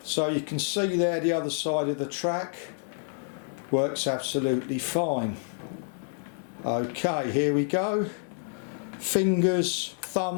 so you can see there the other side of the track works absolutely fine. Okay, here we go. Fingers,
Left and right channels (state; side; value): silent; right; 59 dB below the other